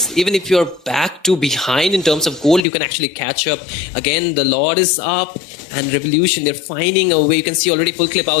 even if you're back to behind in terms of gold, you can actually catch up. Again, the Lord is up, and Revolution, they're finding a way. You can see already full clip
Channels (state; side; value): drops out; right; at 2.7 s